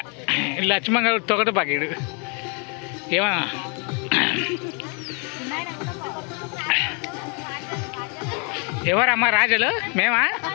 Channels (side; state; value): right; quieter; 35.8 dB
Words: లక్ష్మణ్ గారు తొగట పాకీడు ఏమన్నా ఎవరమ్మా రాజులు మేమా